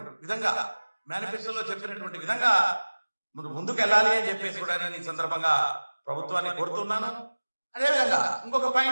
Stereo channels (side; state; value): both; inverted; correlation -1.00